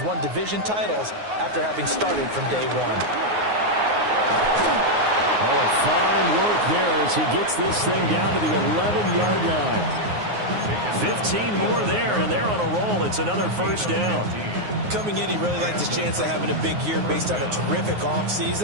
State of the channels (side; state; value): left; late; 9.5 ms